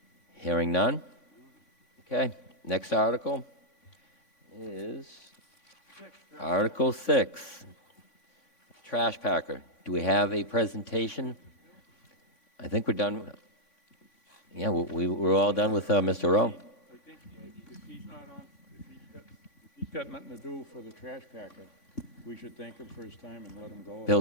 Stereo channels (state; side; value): late; right; 3.2 ms